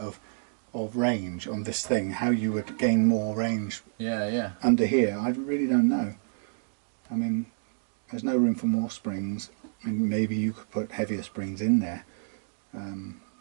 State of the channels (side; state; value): left; silent; digital silence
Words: range on this thing, how you would gain more range under here. I really don't know. I mean, there's no room for more springs. I mean, maybe you could put heavier springs in there,